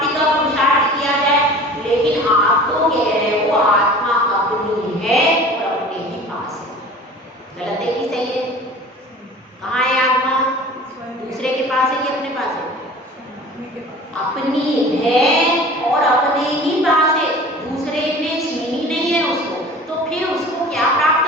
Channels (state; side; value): normal; both; correlation 0.42